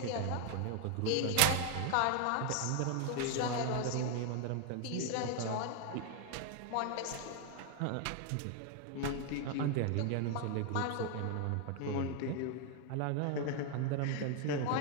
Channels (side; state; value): both; different; correlation 0.00